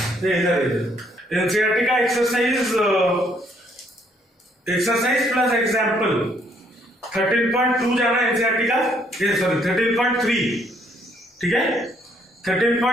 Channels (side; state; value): both; normal; correlation 0.68